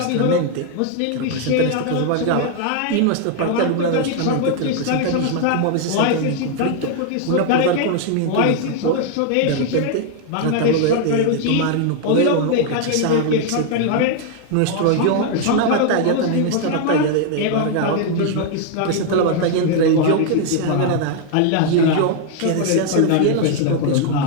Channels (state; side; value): different; both; correlation 0.00